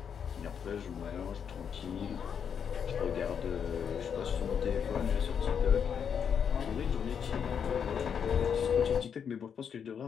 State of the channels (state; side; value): quieter; right; 7.4 dB